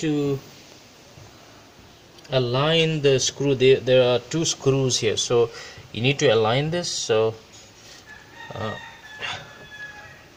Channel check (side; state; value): both; identical; correlation 1.00